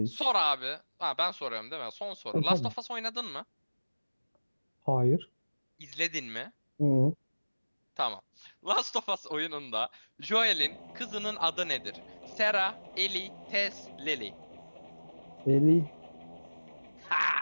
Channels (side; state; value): both; inverted; correlation -1.00